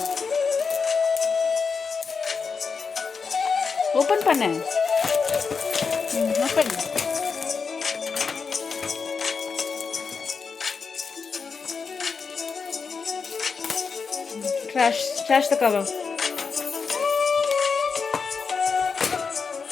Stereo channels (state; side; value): quieter; right; 5.3 dB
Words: ஓபன் பண்ணு. Open. Trash the cover.